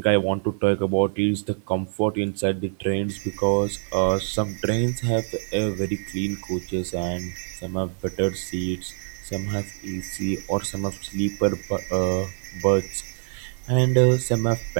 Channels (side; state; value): left; silent; digital silence